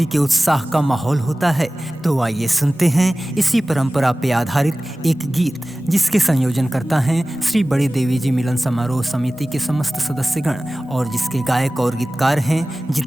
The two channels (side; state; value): both; normal; correlation 0.97